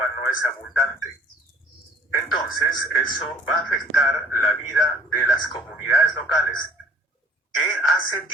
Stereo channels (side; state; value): both; normal; correlation 0.55